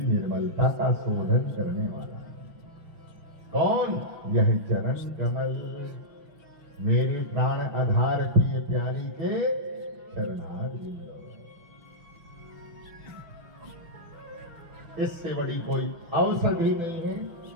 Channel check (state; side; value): late; left; 6.0 ms